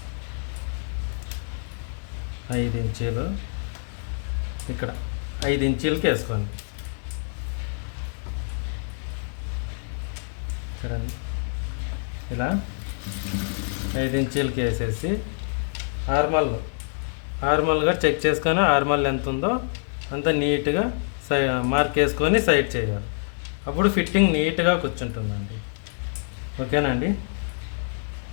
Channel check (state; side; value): silent; right; digital silence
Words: 5 ఇంచీలు ఇక్కడ 5 ఇంచీలకి వేసుకోండి. చూడండి ఇలా 5 ఇంచీలకి వేసేసి ఆర్మల్గా చెక్ చేసుకొని ఆర్మల్ ఎంత ఉందో అంత నీట్గా మార్క్ వేసుకొని సైడ్ చేయాలి. అప్పుడు ఫిట్టింగ్ నీట్గా కూర్చుంటుందండి. ఓకేనండి?